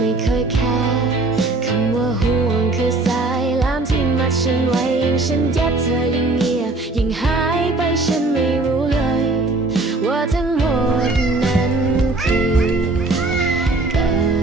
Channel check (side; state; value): left; quieter; 3.1 dB